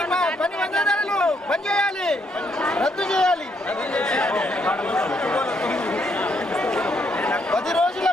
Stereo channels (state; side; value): normal; both; correlation 0.74